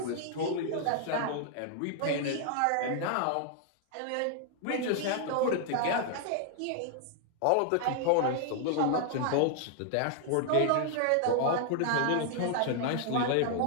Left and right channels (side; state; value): both; different; correlation -0.01